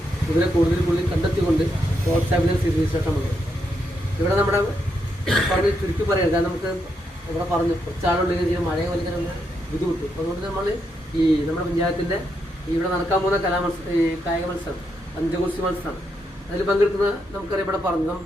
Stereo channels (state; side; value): normal; both; correlation 0.80